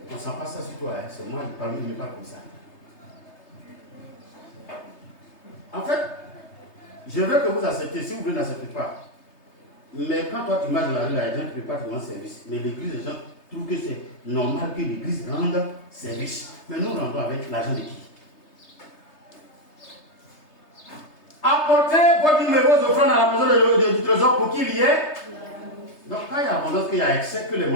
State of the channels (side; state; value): right; late; 3.3 ms